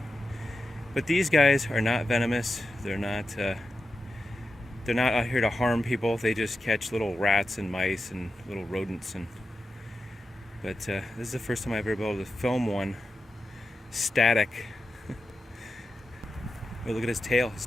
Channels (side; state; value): both; normal; correlation 0.90